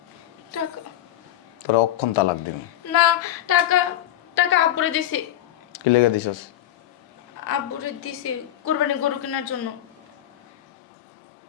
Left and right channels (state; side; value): quieter; right; 12.8 dB